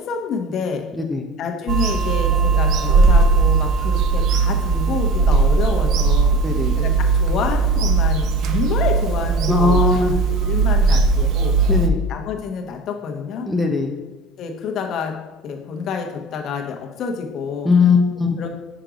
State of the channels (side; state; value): both; normal; correlation 0.38